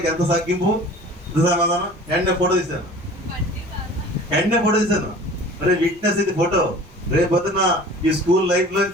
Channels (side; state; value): both; normal; correlation 0.44